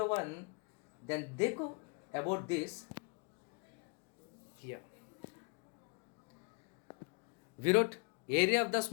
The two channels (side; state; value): right; quieter; 32.7 dB